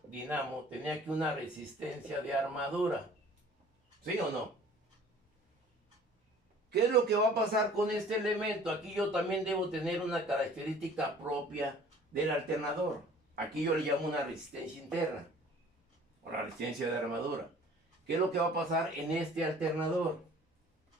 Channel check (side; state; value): both; normal; correlation 0.50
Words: dinamo, tenía aquí una resistencia de armadura. ¿Sí o no? ¿Qué es lo que va a pasar con este elemento? Aquí yo también debo tener una característica propia del alternador. Aquí yo le llamo una resistencia interna, o la resistencia de armadura. ¿Qué es lo que va a pasar en este alternador?